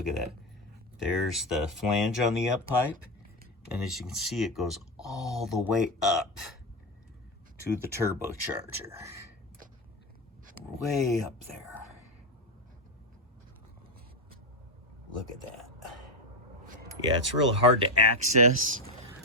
at that. There's the flange on the up pipe, and as you can see, it goes all the way up to the turbocharger. Way up there. Look at that. Yeah, it's really hard to access,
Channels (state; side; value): normal; both; correlation 0.11